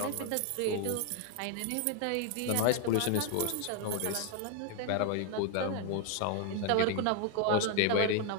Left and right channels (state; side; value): different; both; correlation 0.00